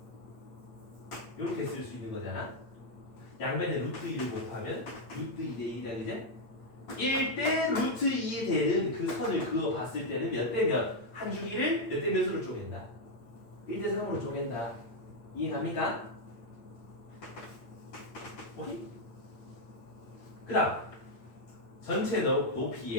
이렇게 쓸 수 있는 거잖아. 양변에 루트 2를 곱하면 루트 2 대 1이다 그제? 1대 루트 2에 되는 그 선을 그어 봤을 때는 몇 대 몇? 한 주기를 몇 대 몇으로 쪼갠다? 1대 3으로 쪼갠다. 이해 갑니까? 오케이? 그 다음 전체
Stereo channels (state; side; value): late; right; 8.7 ms